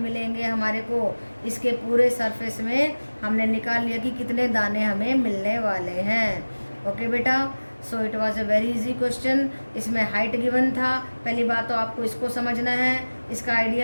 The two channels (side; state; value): both; inverted; correlation -1.00